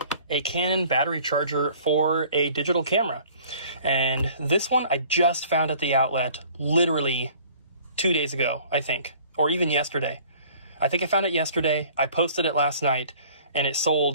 a Canon battery charger for a digital camera. And this one I just found at the outlet literally 2 days ago, I think, or even yesterday. I think I found it yesterday. I posted it last night, and it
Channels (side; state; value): both; inverted; correlation -0.52